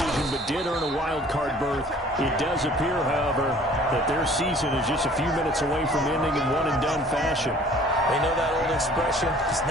but did earn a wild card berth. It does appear, however, that their season is just a few minutes away from ending in one-and-done fashion. They know that old expression, it's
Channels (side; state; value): both; normal; correlation 0.52